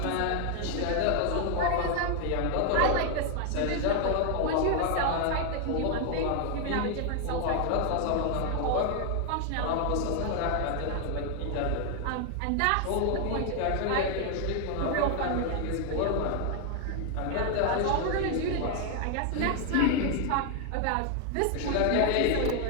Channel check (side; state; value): both; different; correlation 0.00